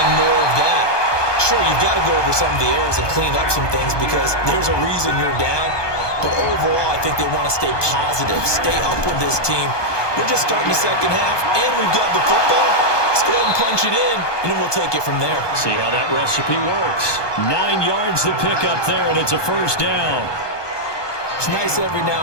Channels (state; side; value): late; right; 1.2 ms